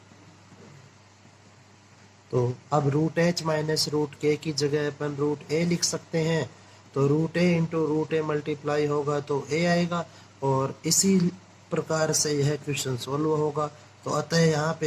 तो अब root h minus root k की जगह अपन रूट a लिख सकते हैं, तो root a into root a multiply होगा तो a आएगा, और इसी प्रकार से यह क्वेश्चन सॉल्व होगा। तो अतः यहाँ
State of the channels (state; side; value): identical; both; correlation 1.00